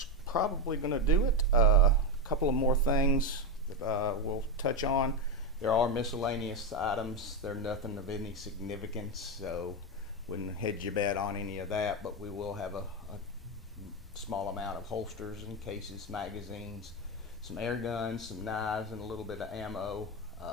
probably going to do it. Couple of more things that we'll touch on. There are miscellaneous items. They're nothing of any significance, so wouldn't hedge your bet on any of that, but we will have a small amount of holsters and cases, magazines, some air guns, some knives, and a little bit of ammo.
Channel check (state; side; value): normal; both; correlation 0.09